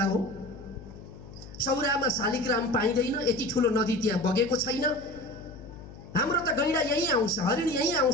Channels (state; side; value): noise; left; hum, 16 dB below the sound